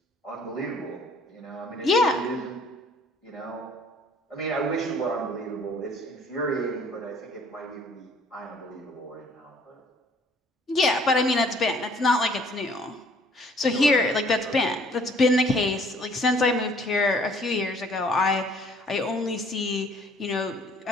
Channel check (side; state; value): both; normal; correlation 0.58